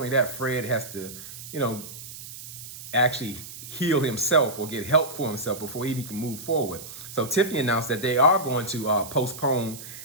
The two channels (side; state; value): right; noise; hiss, 13 dB below the sound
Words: that, Fred has to, actually heal himself or get help for himself before he can move forward. So Tiffany announced that they are going to postpone